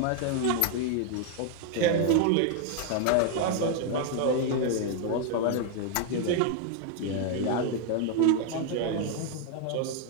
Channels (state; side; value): different; both; correlation 0.00